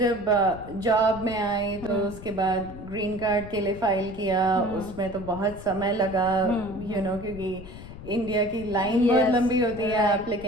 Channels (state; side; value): noise; left; rumble, 14 dB below the sound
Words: जॉब में आई तो उसके बाद ग्रीन कार्ड के लिए फाइल किया। उसमें तो बहुत समय लगा, क्योंकि इंडिया की लाइन बहुत लंबी होती है